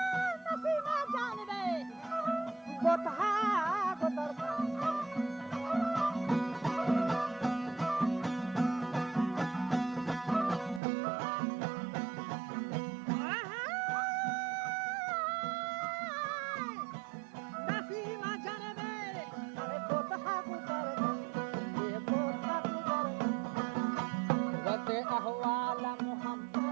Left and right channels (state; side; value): drops out; left; at 10.8 s